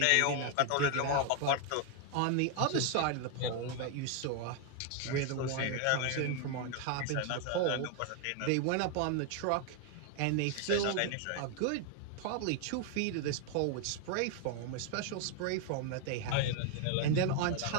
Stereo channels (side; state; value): both; different; correlation 0.00